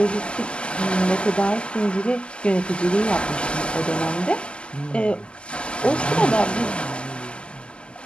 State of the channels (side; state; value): right; late; 0.051 ms